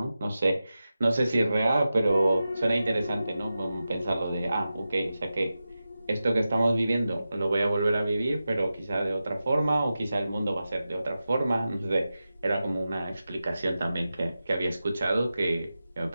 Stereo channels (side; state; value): both; inverted; correlation -0.92